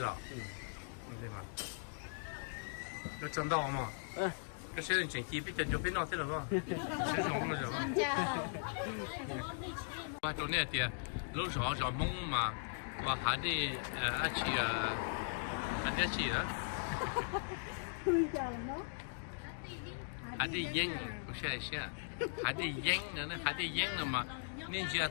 对吧？要挣到嘛？这现在整体比就变闹这了吧？是什么了吧？我昨天的路上找梦嘛，我还得还得去了。还得赢，不是些，还得赢呢，还得赢了嘛。你只要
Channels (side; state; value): right; silent; digital silence